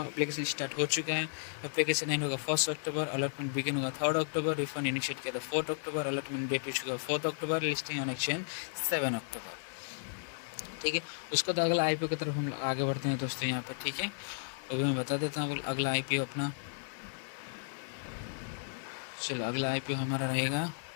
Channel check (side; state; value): right; silent; digital silence